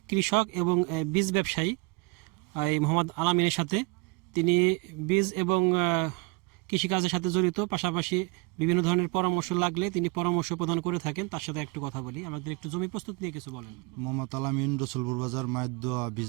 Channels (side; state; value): left; quieter; 27.4 dB